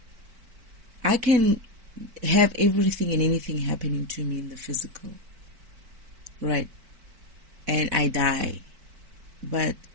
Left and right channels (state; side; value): late; left; 4.5 ms